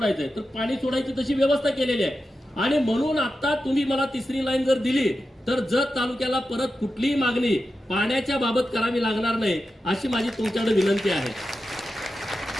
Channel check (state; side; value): normal; both; correlation 0.91